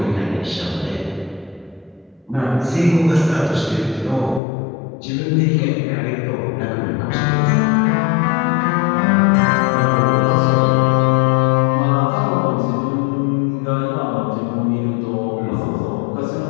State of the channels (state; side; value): drops out; right; at 4.4 s